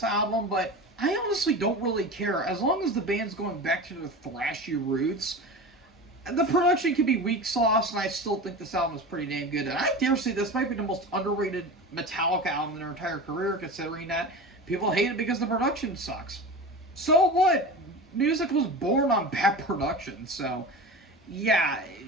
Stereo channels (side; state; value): both; normal; correlation 0.30